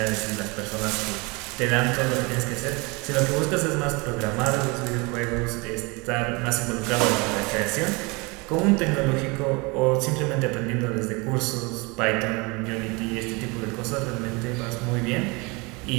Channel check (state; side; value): quieter; left; 27.4 dB